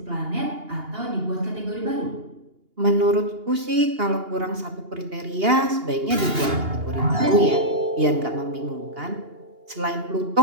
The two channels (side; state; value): left; late; 2.8 ms